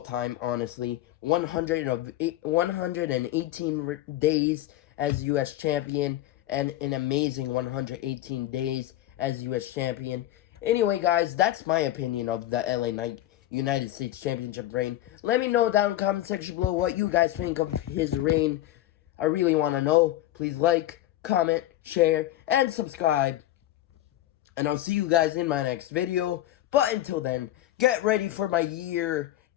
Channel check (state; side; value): quieter; right; 14.2 dB